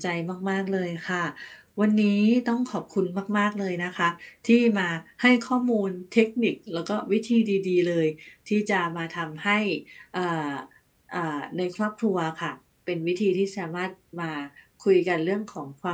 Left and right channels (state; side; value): identical; both; correlation 1.00